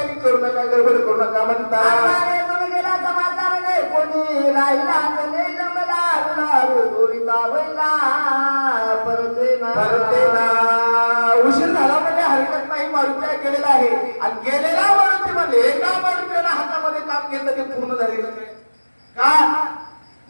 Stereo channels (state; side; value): inverted; both; correlation -1.00